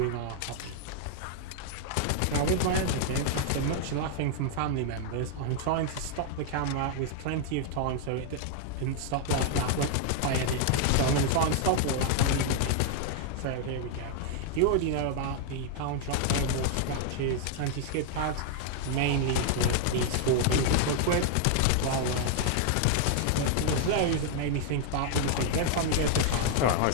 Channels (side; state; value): both; different; correlation 0.00